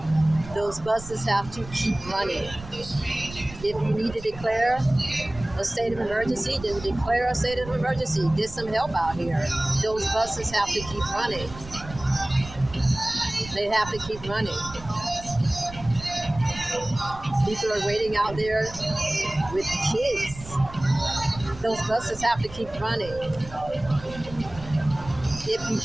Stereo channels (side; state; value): right; noise; rumble, 15 dB below the sound